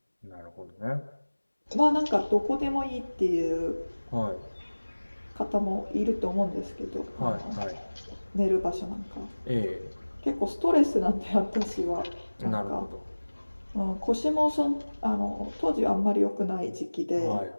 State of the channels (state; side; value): inverted; both; correlation -1.00